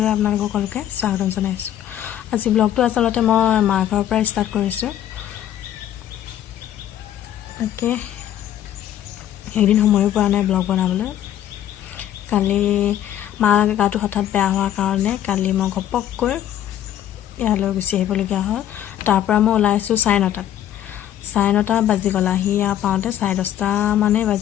আপোনালোকক সকলোকে স্বাগতম জনাইছোঁ। আজি ব্লগটো আচলতে মই মাৰ ঘৰৰ পৰা ষ্টাৰ্ট কৰিছোঁ। তাকে এদিন সময়ো পোৱা নাই ব্লগ বনাবলৈ। কালি মাৰ গাটো হঠাৎ বেয়া হোৱাৰ কাৰণে কালি মই ঘপককৈ ইয়ালৈ গুচি আহিবলগীয়া হ'ল। তাৰ পৰা মই ওলাইছোঁ 9:30। 9:30 বাজি গ'ল। আহি পাওঁতে 10:30 মানেই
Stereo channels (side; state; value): right; quieter; 11.3 dB